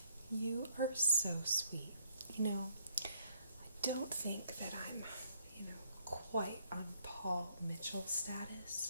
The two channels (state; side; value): inverted; both; correlation -0.69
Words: You are so sweet. You know, I don't think that I'm, quite on Paul Mitchell